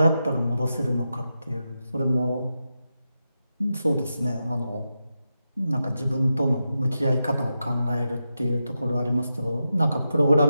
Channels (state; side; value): inverted; both; correlation -0.88